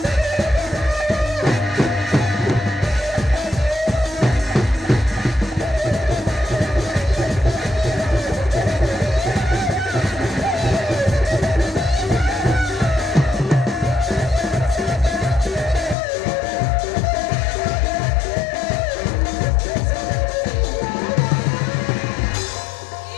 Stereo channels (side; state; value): right; drops out; at 16.0 s